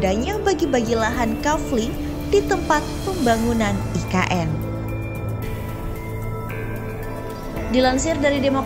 bagi-bagi lahan kafling di tempat pembangunan IKN. Dilansir dari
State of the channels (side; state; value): both; identical; correlation 1.00